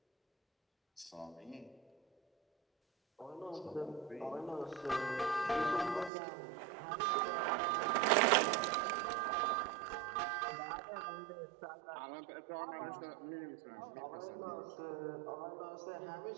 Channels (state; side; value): drops out; left; at 6.1 s